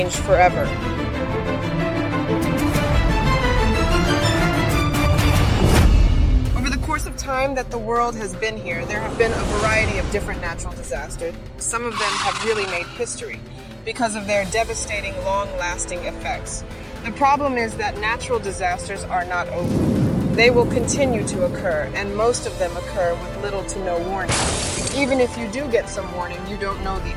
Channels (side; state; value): both; identical; correlation 1.00